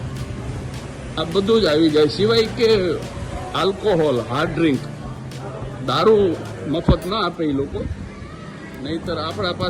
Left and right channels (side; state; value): both; identical; correlation 1.00